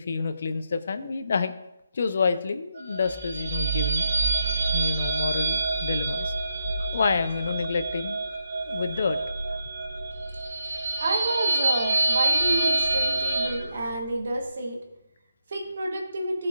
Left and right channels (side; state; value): both; inverted; correlation -0.83